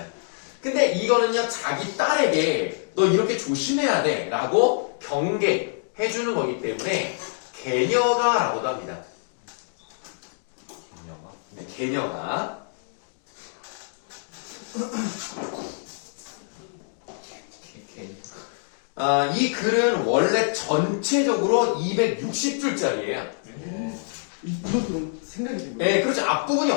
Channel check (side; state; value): right; silent; digital silence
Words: 근데 이거는요 자기 딸에게 너 이렇게 조심해야 돼 라고 경계해주는 거기 때문에 개녀가라고도 합니다. 개념아? 네, 개녀가 이 글은 원래 전체적으로 260줄짜리예요. 이것도 생각이 든 거예요. 네, 그렇죠. 앞부분이